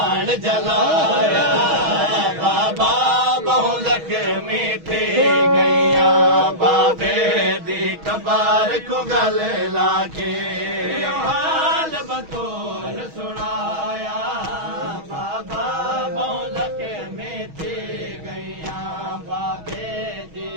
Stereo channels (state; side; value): late; left; 6.3 ms